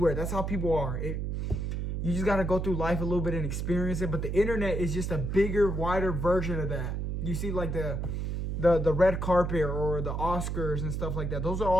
That's how people are. You just got to go through life a little bit and experience it. But the internet is just a bigger, wider version of that. You see like the red carpet or the Oscars and stuff like that. Those are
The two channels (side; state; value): right; noise; hum, 2 dB below the sound